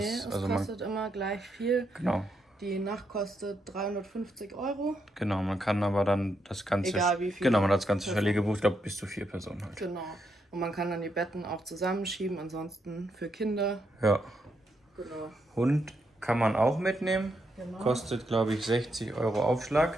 es Also kostet immer gleich viel. Genau. Die Nacht kostet 350 €. Genau, man kann aber dann das ganze. Egal wie viel. Genau, man hat das ganze Chalet gebucht, ich glaube bis zu 4 Personen halt. Genau. Und man kann dann die Betten auch zusammenschieben, ansonsten für Kinder. Ja. Genau. Hund kann man auch mitnehmen. Genau. Kostet, glaube ich, 60 €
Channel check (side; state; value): both; normal; correlation 0.80